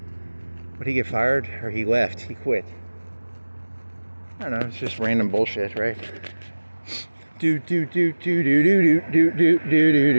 Would he get fired or he left? He quit. I don't know, it's just random bullshit, right? Do do do do do do do do do do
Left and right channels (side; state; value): both; inverted; correlation -1.00